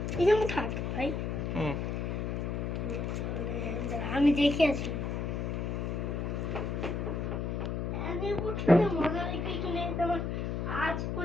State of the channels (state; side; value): noise; left; hum, 1 dB below the sound